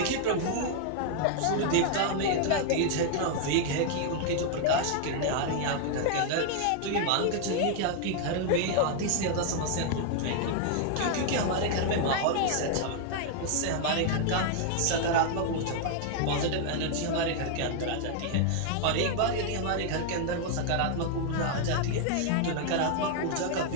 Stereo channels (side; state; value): both; different; correlation 0.00